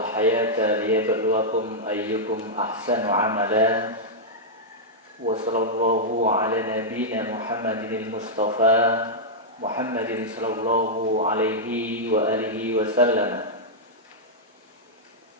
hayata liyabluwakum ayyukum ahsanu amala. Wa sallallahu ala nabiyyina Muhammadin al-Mustafa Muhammadin sallallahu alaihi wa alihi wa sallam.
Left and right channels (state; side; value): normal; both; correlation -0.08